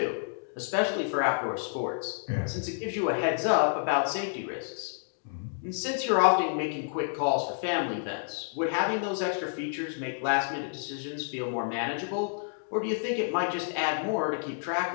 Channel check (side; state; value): right; silent; digital silence